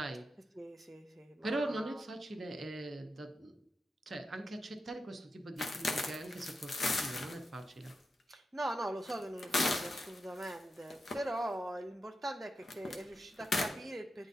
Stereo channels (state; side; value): normal; both; correlation 0.88